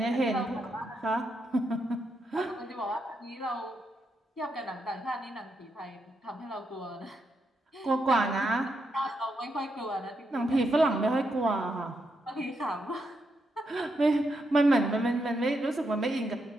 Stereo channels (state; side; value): normal; both; correlation 0.82